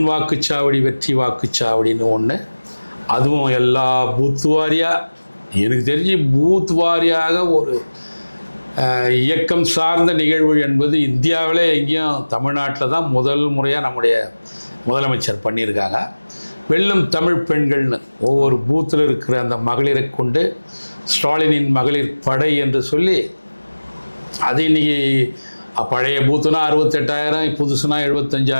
வாக்குச்சாவடி வெற்றி வாக்குச்சாவடின்னு ஒன்று, அதுவும் எல்லா பூத் வாரியாக, எனக்கு தெரிஞ்சு பூத் வாரியாக ஒரு இயக்கம் சார்ந்த நிகழ்வு என்பது இந்தியாவிலே எங்கேயும் தமிழ்நாட்டில் தான் முதல் முறையாக நம்முடைய முதலமைச்சர் பண்ணியிருக்காங்க. வெல்லும் தமிழ் பெண்கள்னு ஒவ்வொரு பூத்தில் இருக்கிற அந்த மகளிரை கொண்டு ஸ்டாலினின் மகளிர் படை என்று சொல்லி, அது இன்றைக்கி பழைய பூத்துனா 68,000, புதுசுனா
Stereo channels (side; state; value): both; inverted; correlation -1.00